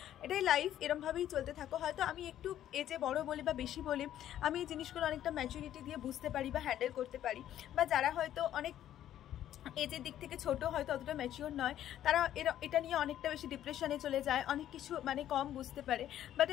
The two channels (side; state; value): right; quieter; 11.6 dB